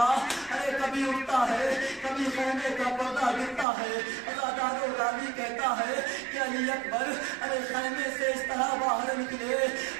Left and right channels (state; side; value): drops out; left; at 3.7 s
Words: ارے کبھی اٹھتا ہے، کبھی خیمے کا پردہ گرتا ہے۔ عزادار راوی کہتا ہے کہ علی اکبر ارے خیمے سے اس طرح باہر نکلے